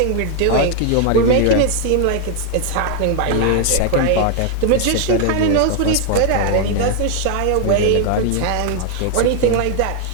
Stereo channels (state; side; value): different; both; correlation 0.00